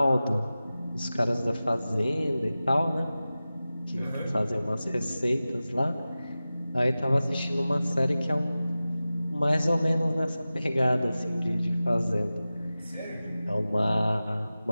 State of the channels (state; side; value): inverted; both; correlation -0.95